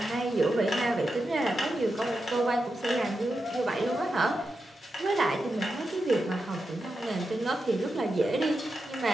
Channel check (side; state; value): both; normal; correlation 0.88